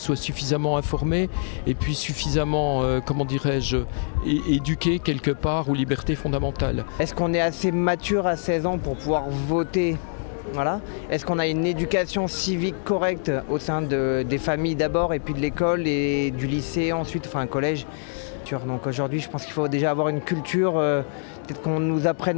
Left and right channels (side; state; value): right; silent; 62 dB below the other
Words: suffisamment informées et puis suffisamment, éduquées quelque part aux libertés fondamentales. Est-ce qu'on est assez mature à 16 ans pour pouvoir voter? Voilà. Est-ce qu'on a une éducation civique correcte au sein des familles d'abord et puis de l'école et du lycée ensuite, un collège? Donc aujourd'hui, je pense qu'il faut déjà avoir une culture, peut-être qu'on nous apprenne